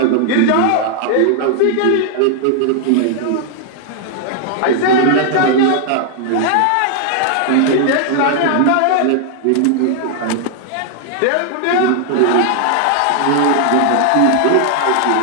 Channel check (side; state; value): both; different; correlation 0.00